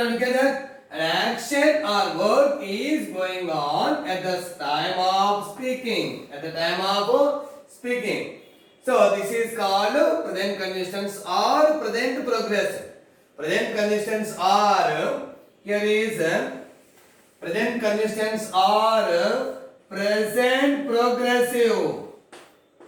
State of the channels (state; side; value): identical; both; correlation 1.00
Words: Look at that. An action or work is going on at the time of speaking. At the time of speaking. So this is called present continuous tense or present progressive. Present continuous tense are here is present continuous tense or present progressive.